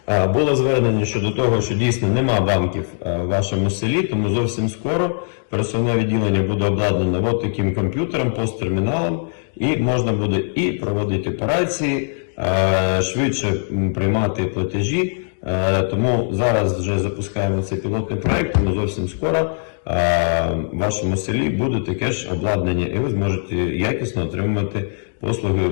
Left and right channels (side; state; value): right; silent; digital silence